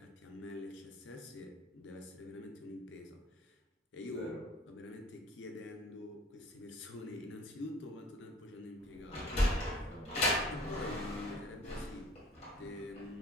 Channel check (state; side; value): normal; both; correlation 0.50